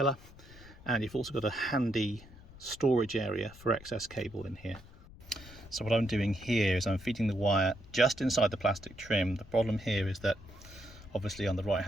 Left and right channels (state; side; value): noise; left; rumble, 19 dB below the sound